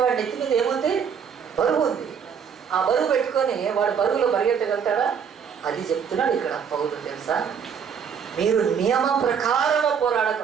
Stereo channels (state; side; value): quieter; left; 7.1 dB